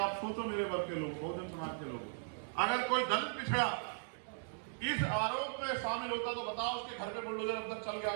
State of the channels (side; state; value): left; silent; digital silence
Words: सोचो मेरे वर्ग के लोग, बहुजन समाज के लोग, अगर कोई दलित पिछड़ा इस आरोप में शामिल होता तो बताओ उसके घर पे बुलडोजर अब तक चल गया